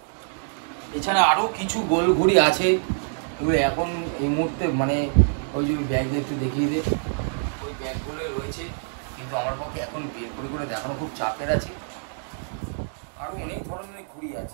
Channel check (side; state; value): left; silent; digital silence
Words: এছাড়া আরো কিছু গোল ঘুড়ি আছে, এগুলো এখন এই মুহূর্তে মানে ওই যে ব্যাগ একটু দেখিয়ে দে, ওই ব্যাগগুলো রয়েছে, কিন্তু আমার পক্ষে এখন বের করে দেখানো খুব চাপের আছে। আরো অনেক ধরনের ঘুড়ি